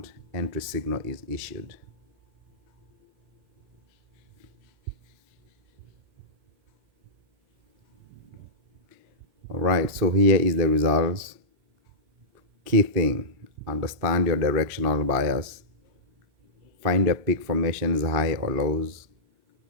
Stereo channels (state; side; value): late; left; 2.7 ms